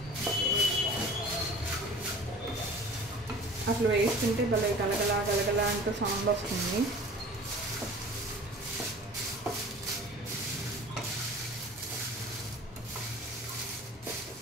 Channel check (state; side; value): normal; both; correlation 0.44